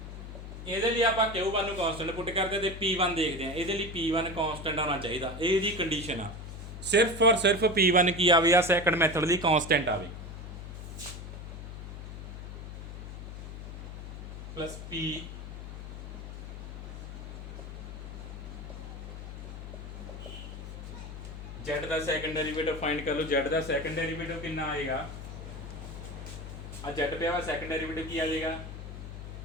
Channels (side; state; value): left; noise; hum, 9 dB below the sound